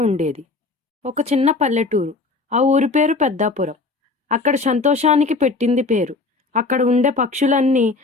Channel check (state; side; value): quieter; right; 3.8 dB